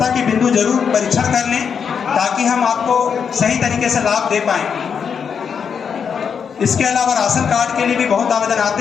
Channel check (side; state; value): right; quieter; 6.8 dB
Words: की बिंदु जरूर परीक्षण कर लें ताकि हम आपको सही तरीके से लाभ दे पाएं। इसके अलावा राशन कार्ड के लिए भी बहुत आवेदन